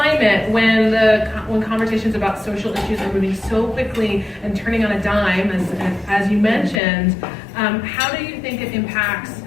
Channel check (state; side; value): drops out; right; at 6.8 s